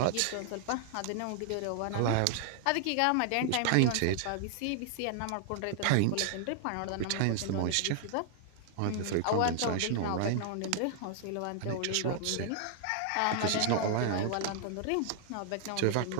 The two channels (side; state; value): both; different; correlation 0.00